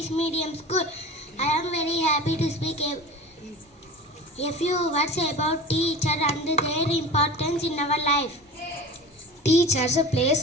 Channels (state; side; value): normal; both; correlation 0.35